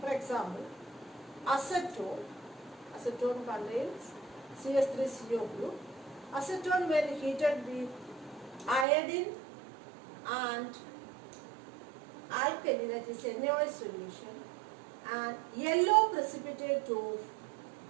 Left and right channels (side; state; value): left; drops out; at 8.8 s